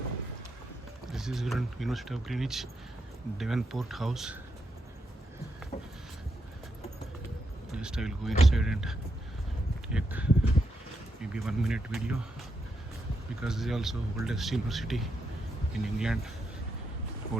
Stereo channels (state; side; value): normal; both; correlation 0.82